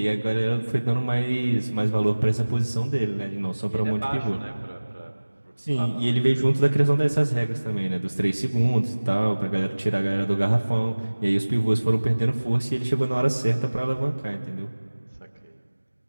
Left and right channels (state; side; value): inverted; both; correlation -1.00